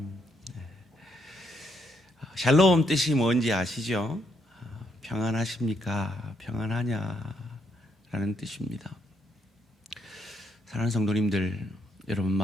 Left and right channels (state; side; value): normal; both; correlation 0.76